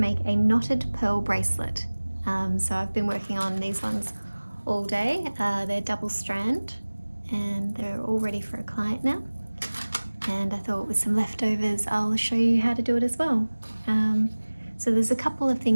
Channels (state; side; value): inverted; both; correlation -1.00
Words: a knotted pearl bracelet. So I've been working on these ones all day. They're double strand and they're all ready for a client now. And I thought with some leftovers I'll show you how to do it as well. So there's a couple of